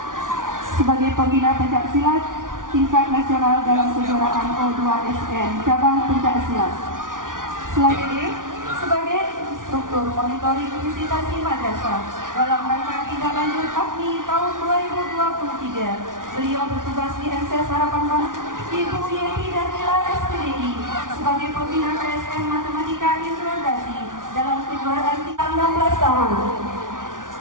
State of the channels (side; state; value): left; late; 0.88 ms